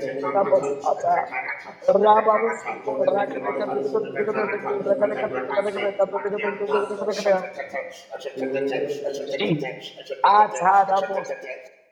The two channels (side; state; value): both; identical; correlation 1.00